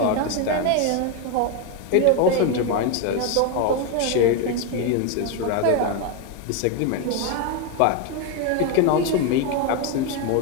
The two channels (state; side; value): different; both; correlation 0.02